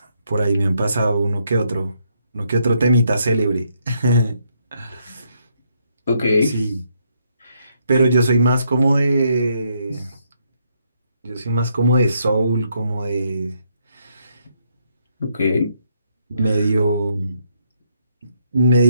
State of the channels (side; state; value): both; inverted; correlation -0.74